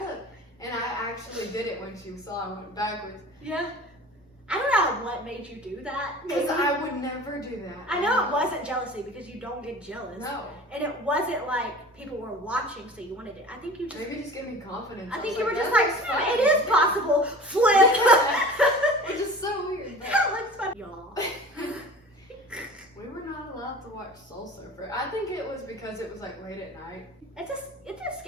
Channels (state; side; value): normal; both; correlation 0.40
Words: And I actually did it when she saw I went backwards. Yeah. I don't know what made you do that. Because I would never do that. I know it wasn't jealousy because you don't get jealous. No. And it wasn't like people were watching so you wanted it. I think you just... Maybe just gave me confidence. I think was you were like, just that like, looks fun. it is possible. Flip. Which is so weird. That looks fun. Y'all. We were not allowed to watch Soul Surfer. I think it was because it was like late at night. It's a